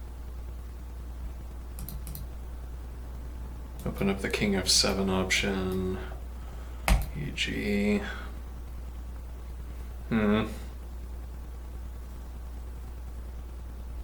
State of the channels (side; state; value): both; identical; correlation 1.00